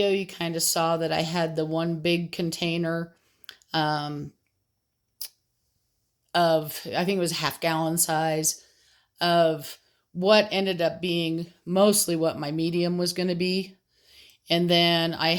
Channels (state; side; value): identical; both; correlation 1.00